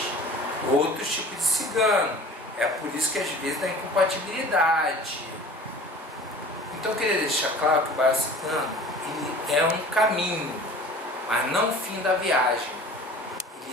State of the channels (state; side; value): normal; both; correlation 0.42